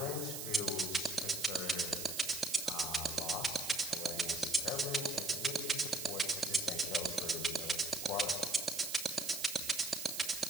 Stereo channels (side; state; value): right; noise; hiss, 6 dB below the sound